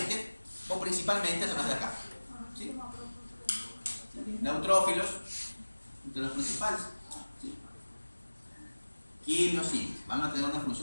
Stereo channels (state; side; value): inverted; both; correlation -1.00